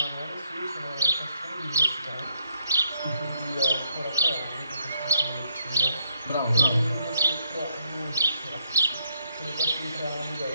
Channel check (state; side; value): inverted; both; correlation -0.74